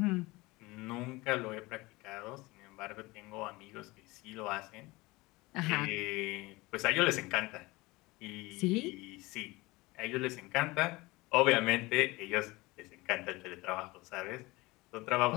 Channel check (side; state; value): right; quieter; 22.2 dB